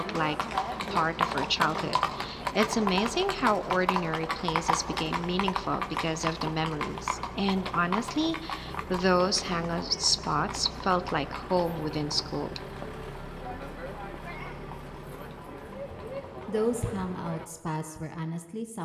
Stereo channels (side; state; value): both; identical; correlation 1.00